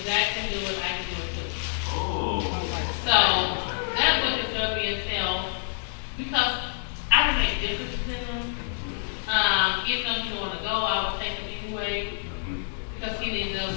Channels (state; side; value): silent; right; digital silence